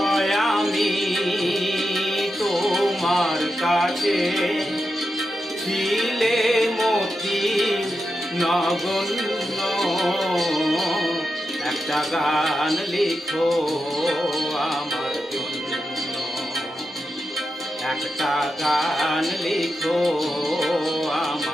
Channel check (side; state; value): both; normal; correlation 0.88